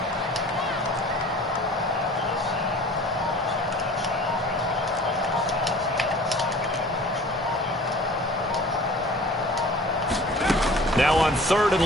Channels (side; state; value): both; normal; correlation 0.45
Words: Now on 3rd and